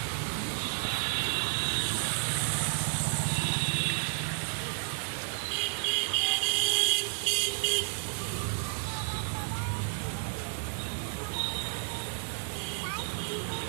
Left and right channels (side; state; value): left; silent; 57 dB below the other